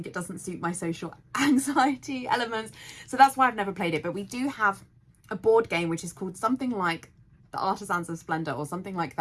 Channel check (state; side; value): identical; both; correlation 1.00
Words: it doesn't suit my social anxiety elements. So that's why I've never played it. But we do have a board game which is called something like The Artisans of Splendor or something like